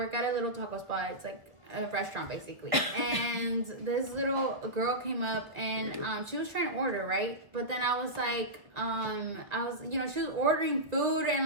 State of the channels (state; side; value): late; left; 1.5 ms